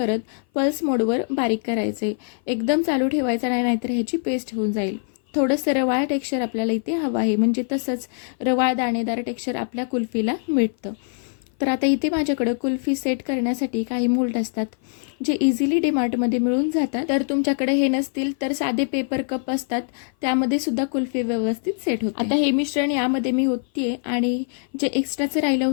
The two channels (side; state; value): right; silent; 58 dB below the other